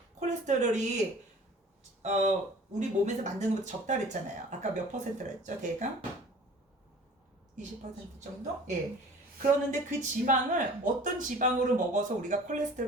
콜레스테롤이 우리 몸에서 만드는 것보다 적다 그랬잖아요. 아까 몇 퍼센트라 했죠? 대강? 20% 정도? 예. 그러는데 그 지방을 어떤 지방으로 먹어서 우리가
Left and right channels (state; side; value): normal; both; correlation 0.46